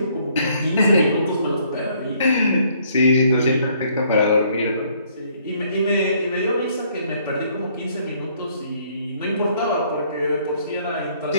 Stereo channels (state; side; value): inverted; both; correlation -0.64